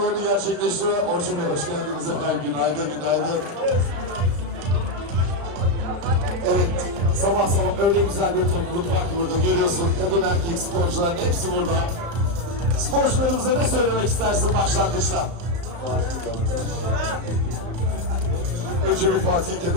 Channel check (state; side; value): late; left; 35 ms